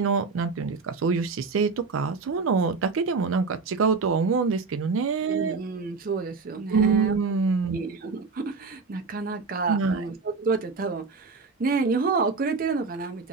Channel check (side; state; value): left; quieter; 4.5 dB